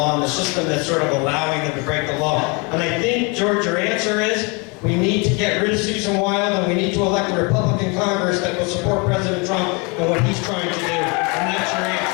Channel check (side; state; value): right; quieter; 30.8 dB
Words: and the system that's sort of allowing them to break the law. And I think, George, your answer is we need to get rid of Susan Wild and we need to elect a Republican Congress that will support President Trump and what he's trying to do. And that's your